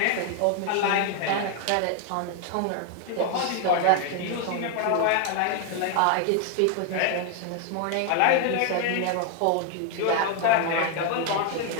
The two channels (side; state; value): both; different; correlation 0.00